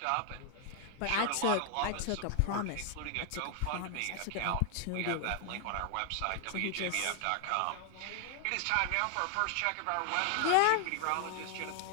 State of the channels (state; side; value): different; both; correlation 0.00